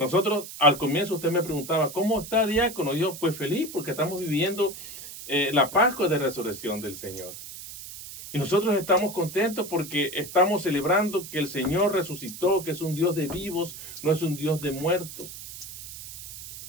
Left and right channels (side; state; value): right; noise; hiss, 12 dB below the sound